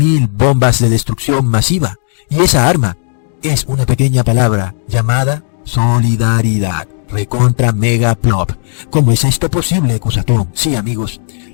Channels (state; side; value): silent; right; digital silence